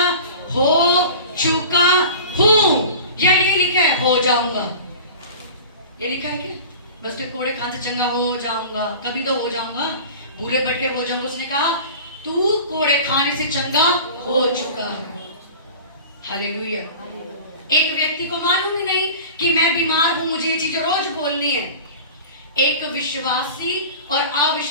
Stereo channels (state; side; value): inverted; both; correlation -0.38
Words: हो चुका हूं, या ये लिखा है हो जाऊंगा, ये लिखा है क्या, बस के कोड़े खाने से चंगा हो जाऊंगा, कभी तो हो जाऊंगा, भूले भटके हो जाऊंगा। उसने कहा तू कोड़े खाने से चंगा हो चुका है। हालेलुया। एक व्यक्ति को मालूम ही नहीं कि मैं बीमार हूं, मुझे ये चीजें रोज बोलनी है। एक विश्वासी और